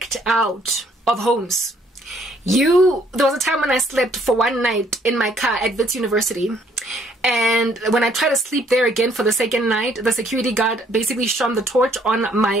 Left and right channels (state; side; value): normal; both; correlation 0.65